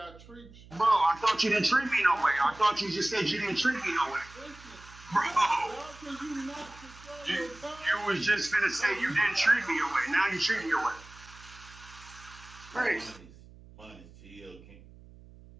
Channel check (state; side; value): noise; right; hum, 21 dB below the sound